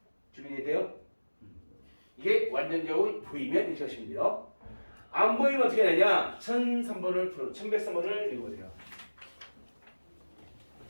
준비되어 돼요? 이게 완전적으로 보이면 이렇게 하시면 돼요. 안 보이면 어떻게 되냐? 1103번을 1103번을 읽어보세요.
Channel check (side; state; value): both; inverted; correlation -1.00